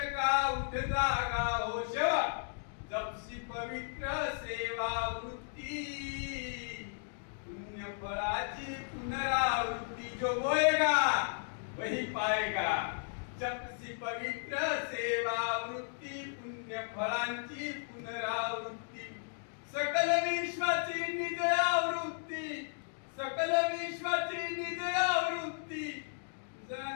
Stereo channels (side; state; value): right; silent; digital silence